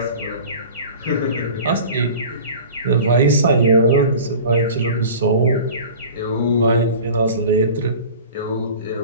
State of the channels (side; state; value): both; inverted; correlation -0.40